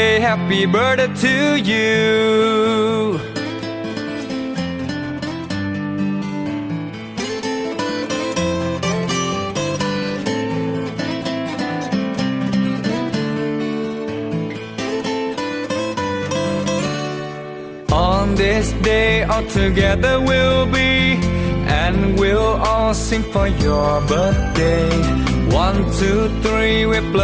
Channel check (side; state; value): both; identical; correlation 1.00